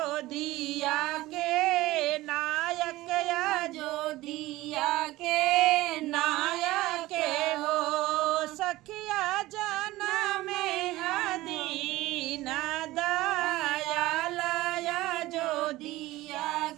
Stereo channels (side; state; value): left; quieter; 17.9 dB